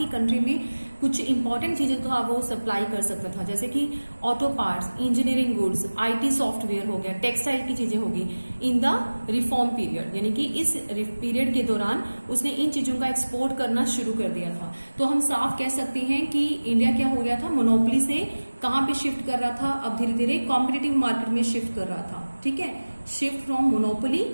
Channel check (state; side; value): inverted; both; correlation -1.00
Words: कंट्री में कुछ इंपॉर्टेंट चीजें तो वो सप्लाई कर सकता था, जैसे कि auto parts, engineering goods, IT software हो गया, टेक्सटाइल की चीजें होगी इन द रिफॉर्म पीरियड, यानी कि इस पीरियड के दौरान उसने इन चीजों का एक्सपोर्ट करना शुरू कर दिया था। तो हम साफ कह सकते हैं कि इंडिया क्या हो गया था, मोनोपोली से कहां पे शिफ्ट कर रहा था, अब धीरे धीरे कॉम्पिटिटिव मार्केट में शिफ्ट कर रहा था। ठीक है, shift from monopoly